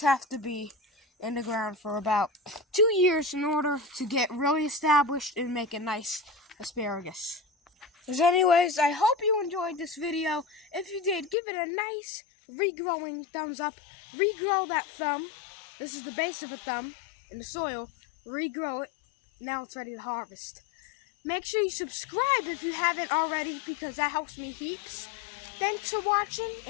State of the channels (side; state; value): right; drops out; at 11.4 s